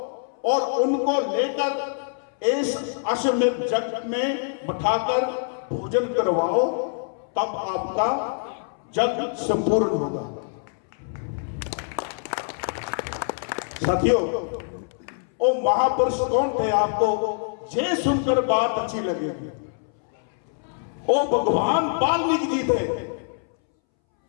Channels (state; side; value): silent; right; 62 dB below the other